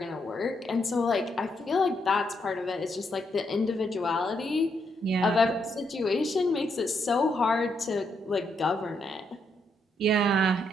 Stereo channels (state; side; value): normal; both; correlation 0.77